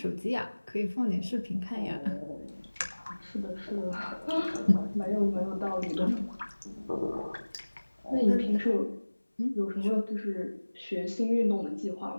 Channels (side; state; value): both; inverted; correlation -1.00